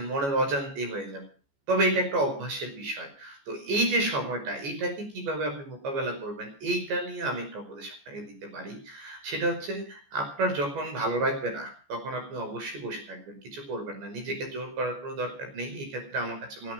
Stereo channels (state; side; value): late; left; 14 ms